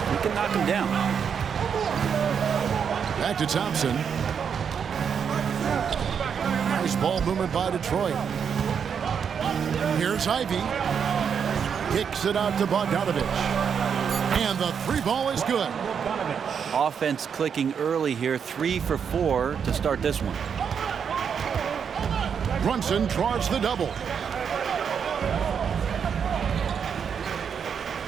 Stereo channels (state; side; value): quieter; left; 7.1 dB